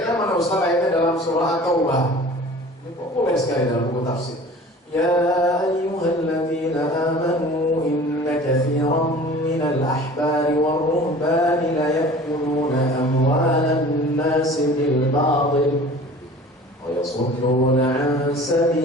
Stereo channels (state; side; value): normal; both; correlation 0.44